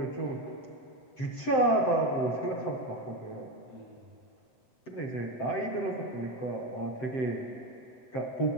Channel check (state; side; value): late; right; 7.8 ms